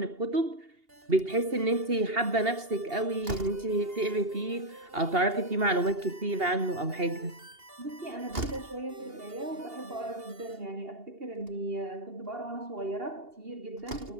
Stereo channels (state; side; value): late; left; 2.8 ms